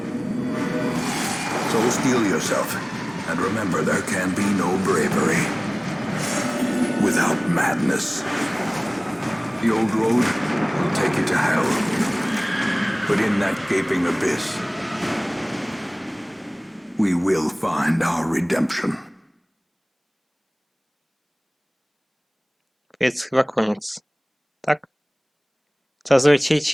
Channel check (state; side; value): identical; both; correlation 1.00